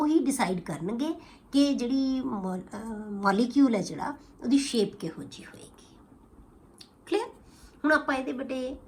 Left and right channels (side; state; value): both; identical; correlation 1.00